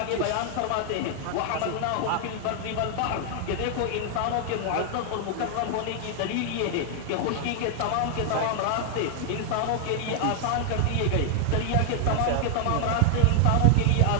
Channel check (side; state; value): both; different; correlation 0.00